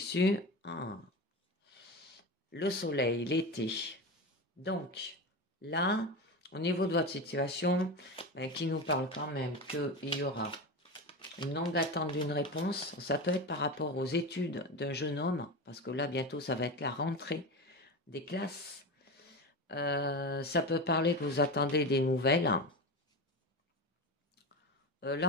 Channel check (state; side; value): normal; both; correlation 0.23